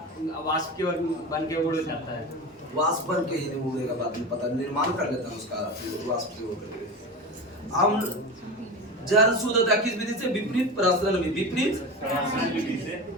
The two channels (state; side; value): normal; both; correlation 0.26